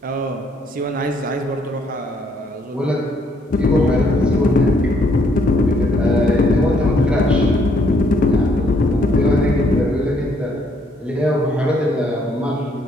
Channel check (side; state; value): both; normal; correlation 0.68